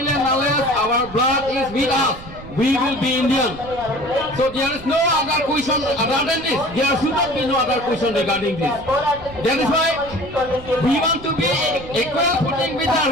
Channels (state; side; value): noise; right; rumble, 16 dB below the sound